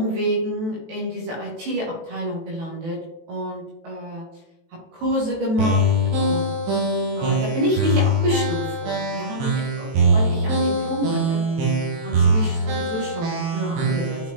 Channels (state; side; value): late; left; 18 ms